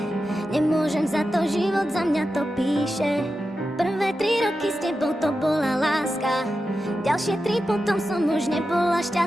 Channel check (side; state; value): both; normal; correlation 0.91